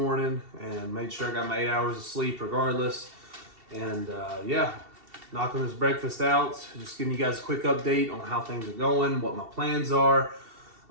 and made sure I got my 8 hours of sleep regardless. And yeah, knocking this breakfast out, just giving you guys a quick update on how things are going, what my plans are.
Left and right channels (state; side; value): late; left; 2.7 ms